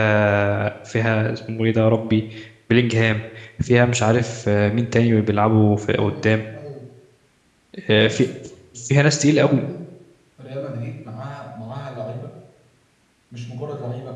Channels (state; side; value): identical; both; correlation 1.00